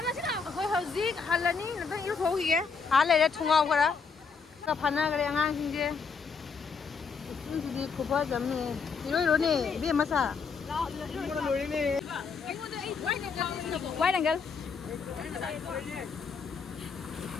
khơi hơi gì hạt là ní nó yếu tố gì vậy hạt này là thùng ngầu cái đó cái phần này cái ngang xin chứ đi cúp hết rồi nè 이리 nè biết mà sao quay đằng kia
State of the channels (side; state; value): right; quieter; 5.4 dB